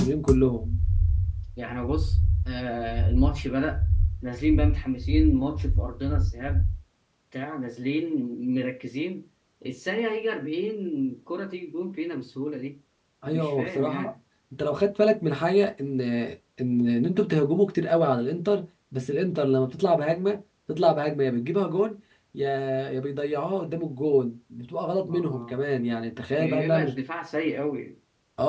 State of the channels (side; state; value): both; identical; correlation 1.00